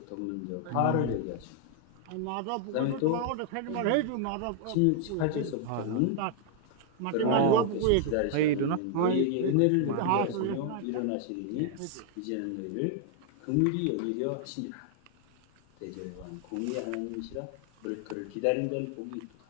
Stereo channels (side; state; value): both; different; correlation 0.00